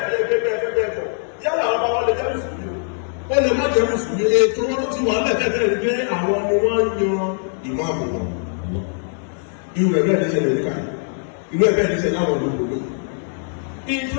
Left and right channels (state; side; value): silent; right; 60 dB below the other